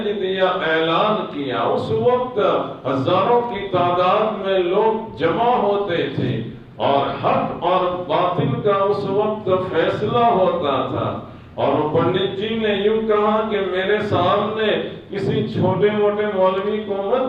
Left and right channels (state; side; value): identical; both; correlation 1.00